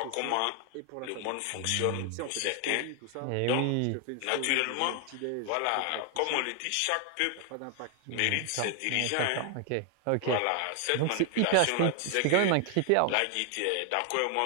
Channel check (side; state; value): both; different; correlation 0.00